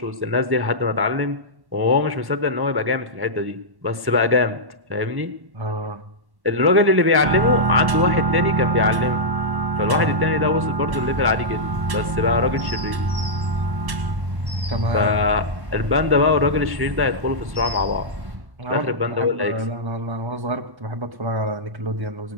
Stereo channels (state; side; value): late; left; 1.1 ms